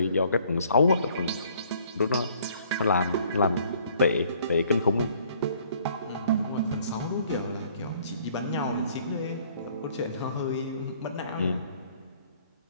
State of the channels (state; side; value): inverted; both; correlation -0.60